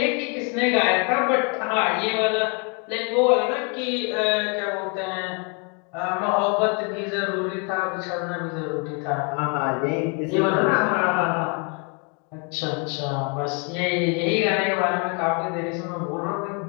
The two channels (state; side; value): quieter; right; 35.5 dB